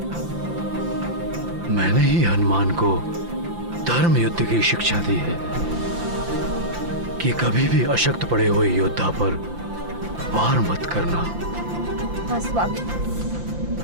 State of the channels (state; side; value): late; left; 5.8 ms